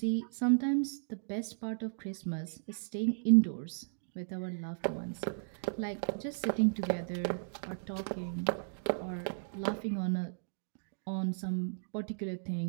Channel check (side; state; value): left; silent; digital silence